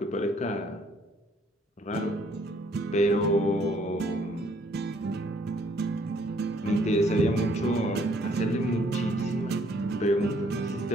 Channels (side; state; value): both; normal; correlation 0.64